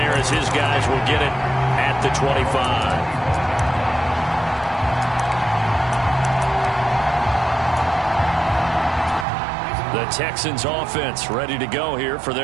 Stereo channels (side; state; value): left; drops out; at 9.2 s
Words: as his guys will get it at the 25. The Texans offense ready to go here for